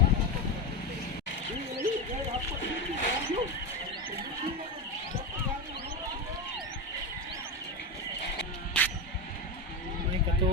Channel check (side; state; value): both; normal; correlation 0.15